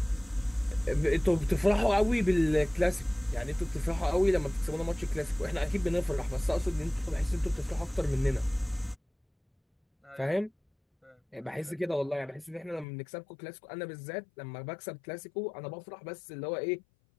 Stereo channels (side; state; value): right; drops out; at 12.9 s